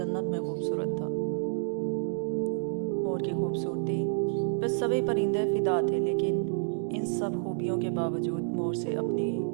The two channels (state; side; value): silent; left; digital silence